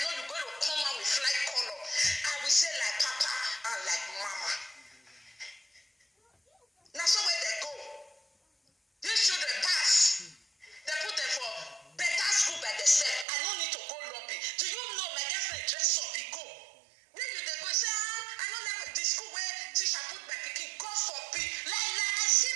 know you're going to come out with fly color. I will say like Papa and like Mama. Now so where they go. These children pass. They put them for better school by themselves. I don't need to go lobby. Do you know my girlfriend dress up? He go. Where you they go? Say, I don't like the school where teacher put my pikin. God forbid. Like I see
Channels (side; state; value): left; drops out; at 13.2 s